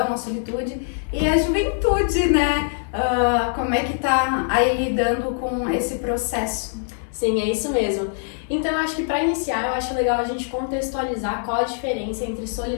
a solitude, e a juventude, né, como é que tá aí lidando com esse processo. Sim, é isso mesmo. Então, eu acho que para iniciar, eu acho legal a gente contextualizar qual a diferença entre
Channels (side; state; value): right; silent; 64 dB below the other